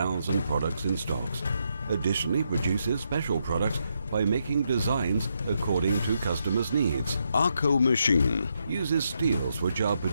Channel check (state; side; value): inverted; both; correlation -0.80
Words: products in stocks. Additionally, produces special products by making designs according to customers' needs. Akko machine uses steels which are